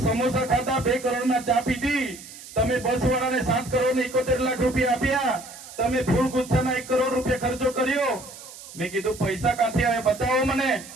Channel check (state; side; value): noise; right; hiss, 16 dB below the sound